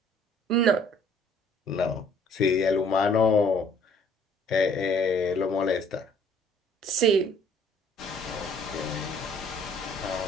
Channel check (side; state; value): both; normal; correlation 0.58